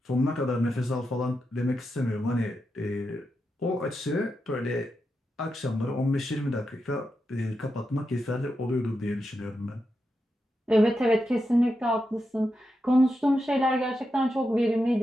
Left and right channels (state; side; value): normal; both; correlation 0.87